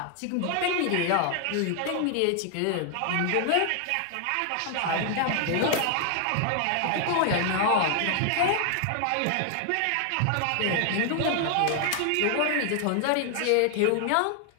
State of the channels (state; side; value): different; both; correlation 0.00